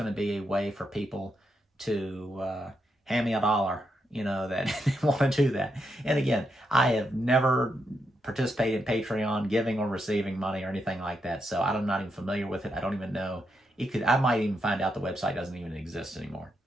to be a way for people to hand me $1, that they want to do that. And again, I have never participated in Patreon, giving or receiving money or anything like that. So I'm not even familiar with it. I don't even know. I might even find out the website doesn't even exist anymore.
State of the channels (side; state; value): both; normal; correlation 0.82